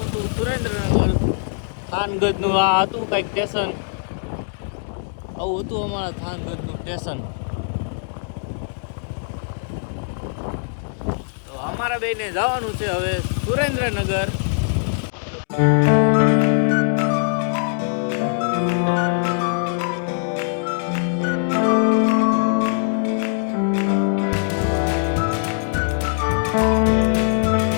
હતું સુરેન્દ્રનગર। થાનગઢનું આ હતું કંઈક સ્ટેશન, આવું હતું અમારા થાનગઢનું સ્ટેશન। તો અમારા બેને જવાનું છે હવે સુરેન્દ્રનગર।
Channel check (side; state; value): right; silent; digital silence